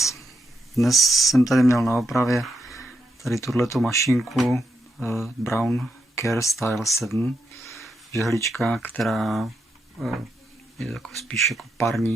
Dnes jsem tady měl na opravě tady tuhletu mašinku Braun CareStyle 7. Žehlička, která je jako spíš jako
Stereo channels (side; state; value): both; normal; correlation 0.82